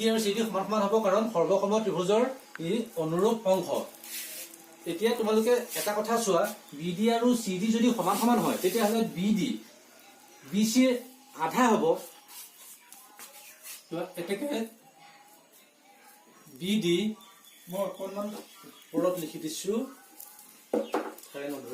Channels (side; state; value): both; identical; correlation 1.00